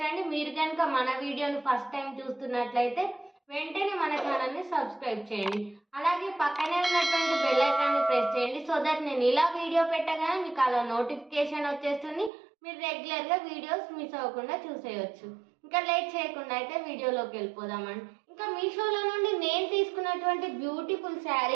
అండి. మీరు కనుక మన వీడియోని ఫస్ట్ టైం చూస్తున్నట్లయితే వెంటనే మన ఛానల్ ని సబ్స్క్రైబ్ చేయండి. అలాగే పక్కనే ఉన్నటువంటి బెల్ ఐకాన్ ని ప్రెస్ చేయండి. సో దట్ నేను ఇలా వీడియో పెట్టగానే మీకు అలా నోటిఫికేషన్ వచ్చేస్తుంది. మీరు రెగ్యులర్ గా వీడియోస్ మిస్ అవ్వకుండా చూసేయచ్చు. ఇంకా లేట్ చేయకుండా అయితే వీడియోలోకి వెళ్ళిపోదామండి. ఇంకా మీషోలో నుండి నేను తీసుకున్నటువంటి బ్యూటిఫుల్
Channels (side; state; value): left; drops out; at 12.3 s